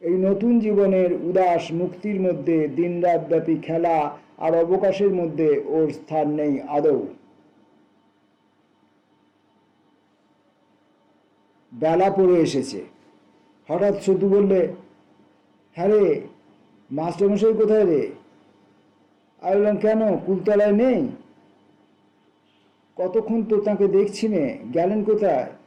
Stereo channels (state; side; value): identical; both; correlation 1.00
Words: এই নতুন জীবনের উদাস মুক্তির মধ্যে দিনরাতব্যাপী খেলা আর অবকাশের মধ্যে ওর স্থান নেই আদৌ। বেলা পড়ে এসেছে। হঠাৎ সতু বললে, হ্যাঁ রে, মাস্টারমশাই কোথায় রে? আমি বললাম, কেন, কুলতলায় নেই? কতক্ষণ তো তাকে দেখছি নে, গেলেন কোথায়?